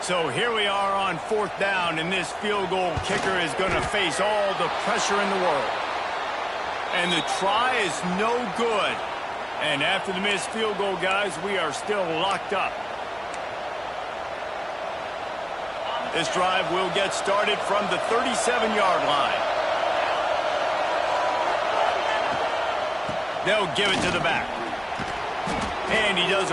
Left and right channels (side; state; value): both; identical; correlation 1.00